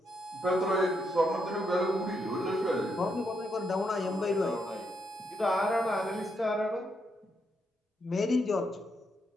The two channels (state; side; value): normal; both; correlation 0.79